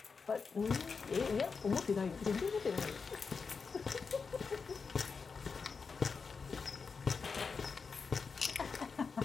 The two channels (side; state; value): right; quieter; 5.2 dB